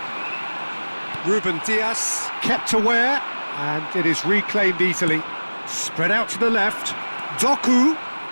Ruben Dias kept aware, and it is reclaimed easily. Spread out to the left. Doku.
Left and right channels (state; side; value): inverted; both; correlation -1.00